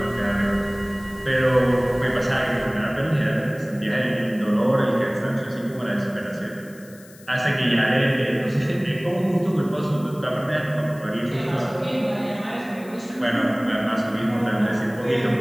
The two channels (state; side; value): noise; left; hiss, 23 dB below the sound